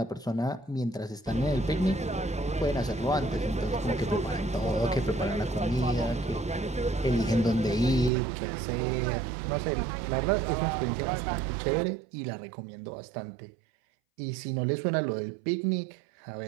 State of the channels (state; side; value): drops out; left; at 8.1 s